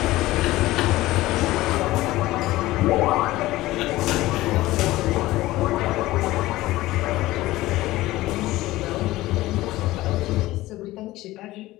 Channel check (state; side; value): quieter; right; 17.5 dB